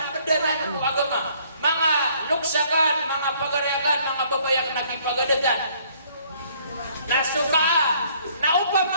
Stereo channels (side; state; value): both; inverted; correlation -0.62